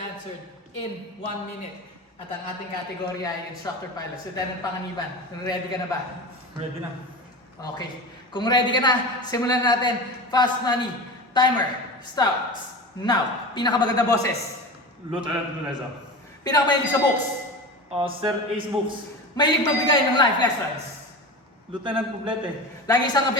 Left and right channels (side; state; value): both; normal; correlation 0.29